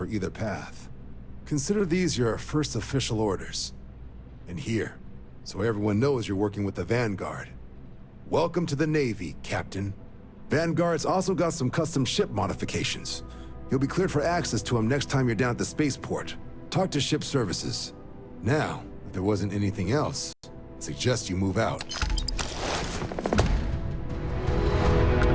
either path. Consider these your first official orders. And here, so everyone knows you're working with the Vanguard. Welcome to the Navy, Captain. Vanguard's also got some custom ship modifications. You'll be cleared for access to them next time you're down at the spaceport. Talk to ship services. Now, if there wasn't anything else, I suggest you move out.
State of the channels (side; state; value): both; identical; correlation 1.00